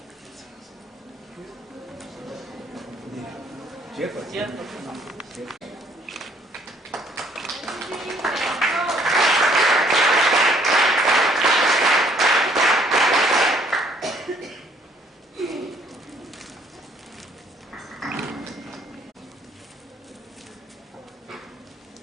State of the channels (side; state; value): both; normal; correlation 0.63